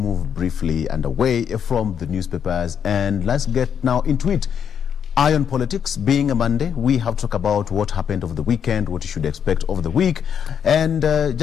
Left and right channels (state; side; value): quieter; right; 8.0 dB